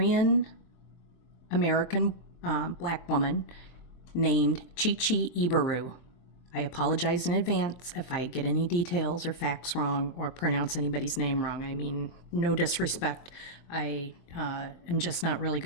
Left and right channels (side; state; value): right; late; 23 ms